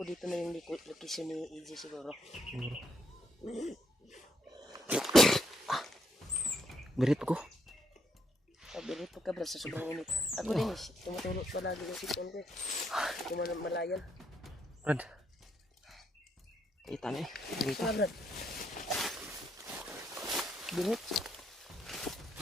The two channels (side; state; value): both; normal; correlation 0.74